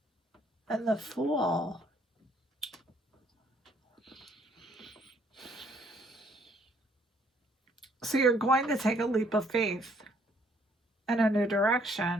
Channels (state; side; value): normal; both; correlation 0.65